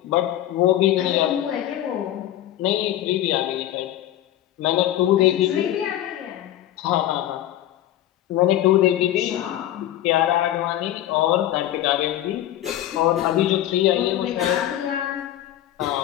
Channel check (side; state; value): right; quieter; 12.9 dB